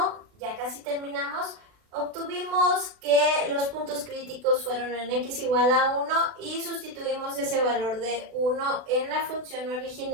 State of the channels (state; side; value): late; left; 38 ms